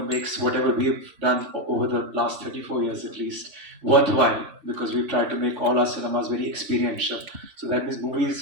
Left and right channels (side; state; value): left; late; 3.5 ms